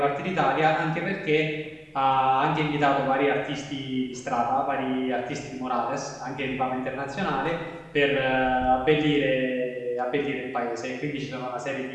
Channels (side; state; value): both; identical; correlation 1.00